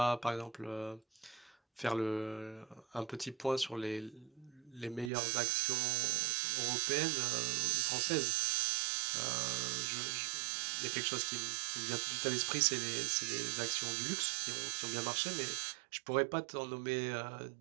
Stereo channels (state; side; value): drops out; left; at 5.1 s